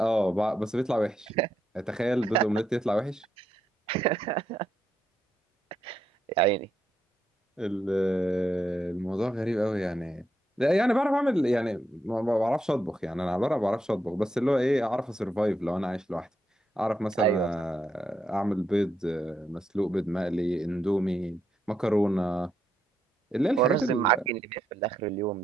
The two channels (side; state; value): both; normal; correlation 0.80